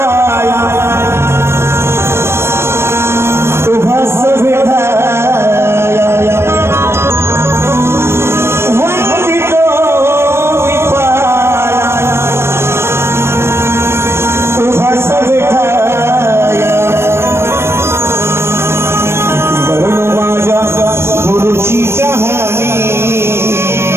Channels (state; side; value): late; left; 0.12 ms